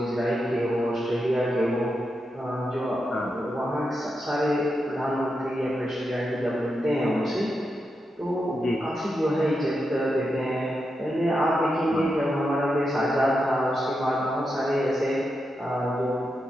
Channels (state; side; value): normal; both; correlation 0.86